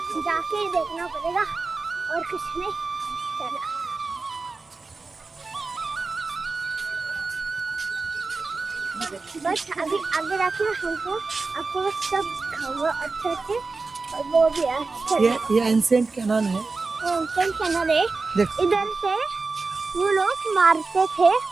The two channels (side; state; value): left; quieter; 4.0 dB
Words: जाके ही देखना पड़ेगा और कुछ नहीं. चलो बस अभी आगे जाके हमको आपको सब दिखाऊंगा अच्छे से. और वो भी अच्छा ये एंशिएंट कैनन है. कैनन है. देख. इधर से वो लोग मारते थे